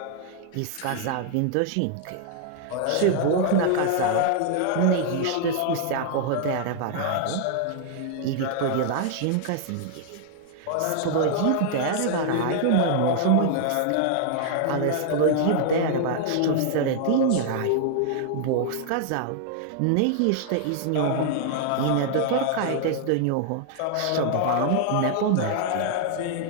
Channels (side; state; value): both; different; correlation -0.01